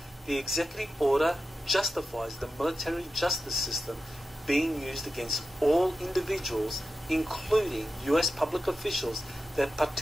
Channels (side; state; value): both; normal; correlation 0.91